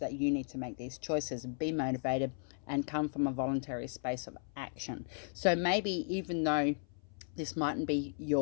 you need to make these choices and be motivated and come from a voluntary space of action. So maybe even though This mightn't be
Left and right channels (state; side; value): silent; right; 54 dB below the other